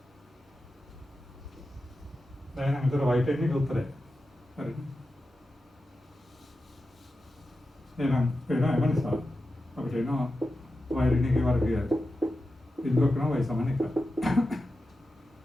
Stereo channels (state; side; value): normal; both; correlation 0.91